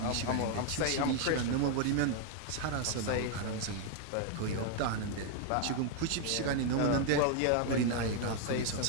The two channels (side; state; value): both; different; correlation 0.00